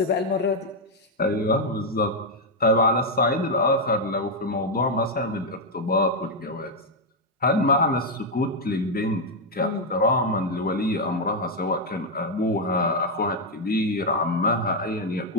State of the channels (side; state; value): both; normal; correlation 0.01